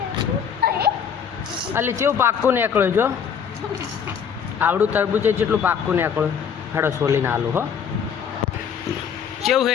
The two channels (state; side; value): quieter; right; 7.3 dB